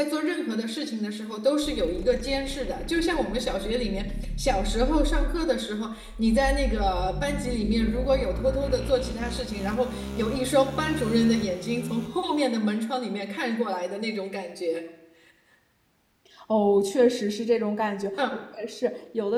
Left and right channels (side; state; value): both; identical; correlation 1.00